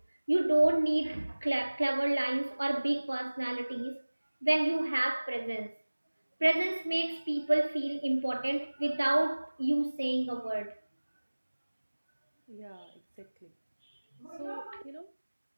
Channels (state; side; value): inverted; both; correlation -1.00